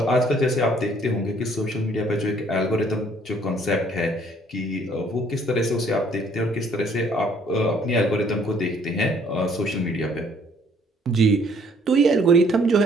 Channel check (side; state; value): both; normal; correlation 0.62